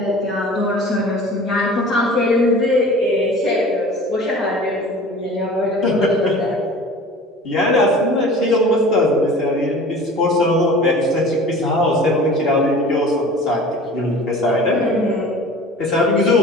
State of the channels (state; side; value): normal; both; correlation 0.42